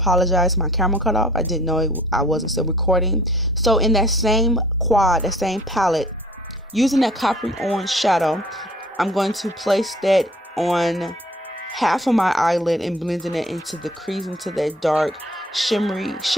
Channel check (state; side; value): normal; both; correlation 0.53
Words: my camera cut off. I didn't know I wasn't still recording. So in that same quad, that same palette, using that coppery orange shadow, I'm going to place that on half of my eyelid and blending it into the crease, into that dark shimmery